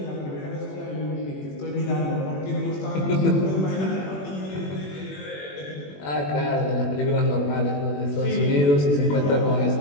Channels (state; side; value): late; right; 21 ms